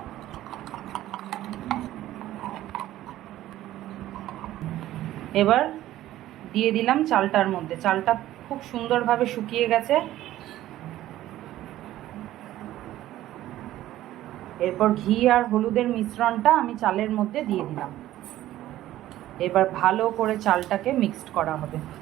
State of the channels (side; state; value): left; quieter; 14.2 dB